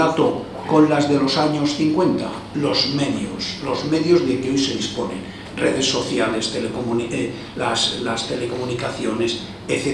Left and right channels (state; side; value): identical; both; correlation 1.00